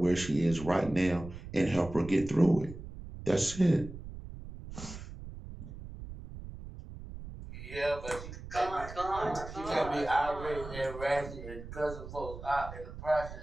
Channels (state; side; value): noise; right; rumble, 12 dB below the sound